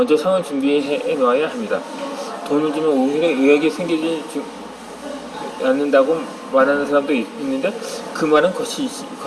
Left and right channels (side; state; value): both; identical; correlation 1.00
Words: 상을 준비해 놓아야 합니다. 돈을 주면 오히려 의욕이 생기지 않는다고 말하는 사람도 있는데 그 말은